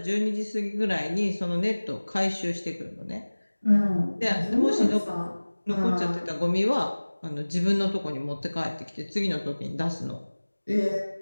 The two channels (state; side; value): inverted; both; correlation -1.00